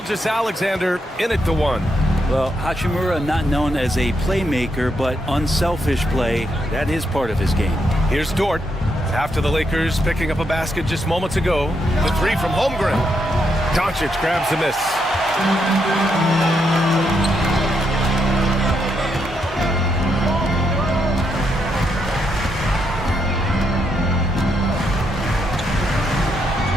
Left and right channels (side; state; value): both; normal; correlation 0.79